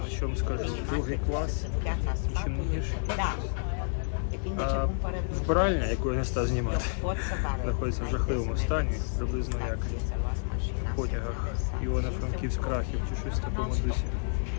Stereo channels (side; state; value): right; silent; digital silence